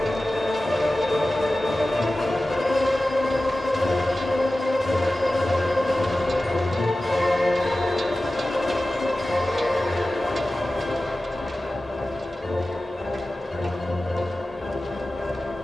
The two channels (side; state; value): both; normal; correlation 0.95